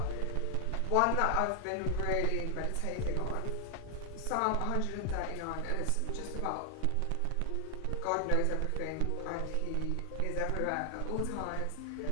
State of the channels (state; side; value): different; both; correlation 0.00